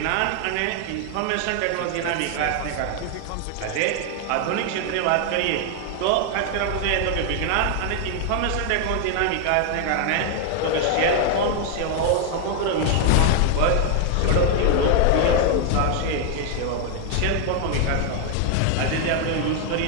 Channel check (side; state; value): both; different; correlation 0.00